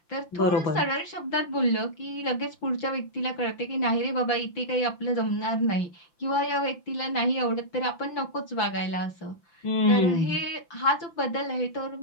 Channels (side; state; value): right; late; 5.9 ms